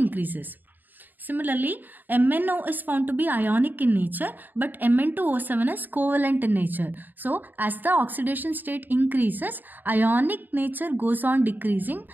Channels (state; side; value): late; left; 0.089 ms